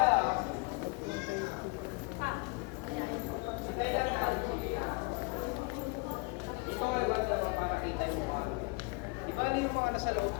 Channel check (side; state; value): right; quieter; 29.0 dB